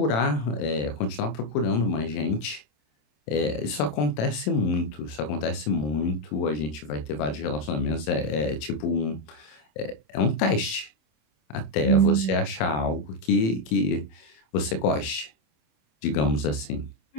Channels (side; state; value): right; late; 27 ms